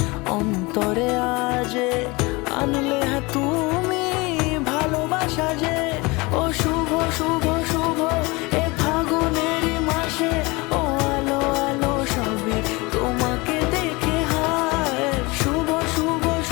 অন্তরে আজে, আনলে হ্যাঁ তুমি ভালোবাসা যে। ও শুভ শুভ শুভ এ ফাগুনেরই মাসে, ও আলো আলো সবই তোমাকে দেখে হায়। শুভ শুভ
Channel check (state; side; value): quieter; right; 24.7 dB